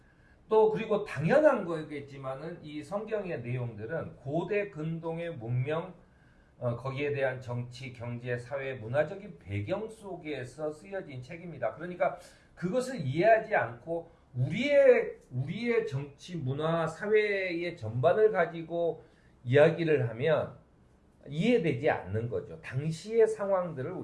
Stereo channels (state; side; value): identical; both; correlation 1.00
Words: 또 그리고 당연한 거겠지만은 이 성경의 내용들은 고대 근동의 문명 거기에 대한 정치, 경제, 사회, 문화적인 배경 속에서 쓰여진 책입니다. 그러니까 그것을 이해하지 않고 우리의 정치, 문화, 사회의 전반을 가지고 이야기를 하면 이해되지 않는 거죠. 당시의 상황들을